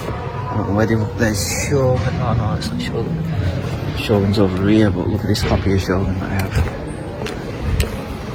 I don't know where there's Shogun. No, it's not Shogun. Shogun's over here, but look at this copy of Shogun that I have.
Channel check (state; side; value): identical; both; correlation 1.00